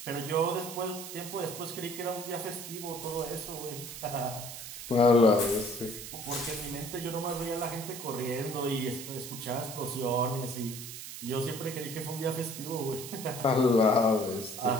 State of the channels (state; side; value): noise; right; hiss, 10 dB below the sound